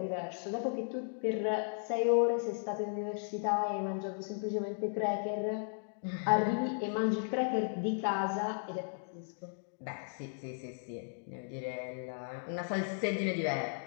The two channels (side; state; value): right; silent; digital silence